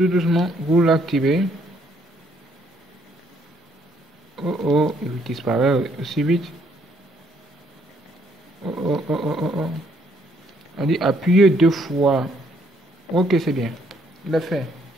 doucement, vous l'activez. Oh, il disparaît aussi vite. Oh. On dit appuyez deux fois. Ok, c'est bien. Il est fait.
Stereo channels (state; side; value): normal; both; correlation 0.68